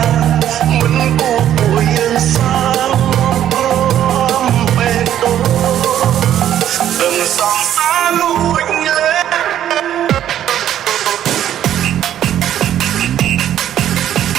ងមិនគួរពួកយើងសាលព្រមពេកដូរត្រឹមសងសាលួចលើ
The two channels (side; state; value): left; quieter; 11.0 dB